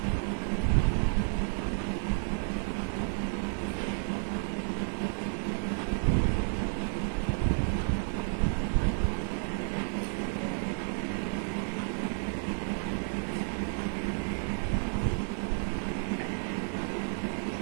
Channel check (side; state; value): left; silent; digital silence